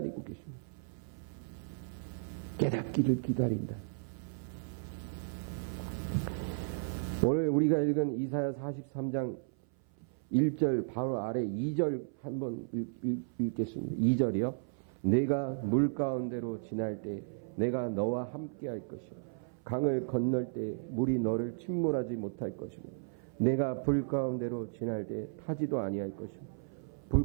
계십니다. 깨닫기를 기다린다. 오늘 우리가 읽은 이사야 43장 1절 바로 아래 2절 한번 읽겠습니다. 2절이요. 내가 물 가운데로 지날 때 내가 너와 함께 할 것이요. 강을 건널 때 물이 너를 침몰하지 못할 것이며 내가 불 가운데로 지날 때 타지도 아니할 것이며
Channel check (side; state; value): left; silent; 55 dB below the other